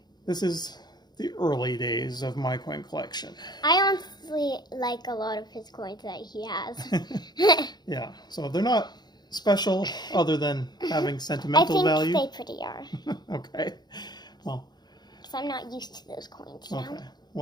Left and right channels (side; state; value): right; late; 0.20 ms